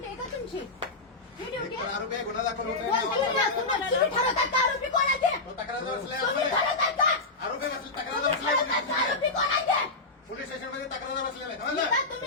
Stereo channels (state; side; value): quieter; right; 3.4 dB